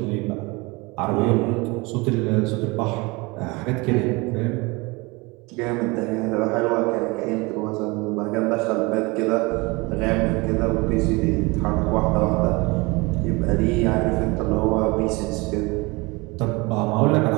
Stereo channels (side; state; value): left; quieter; 25.3 dB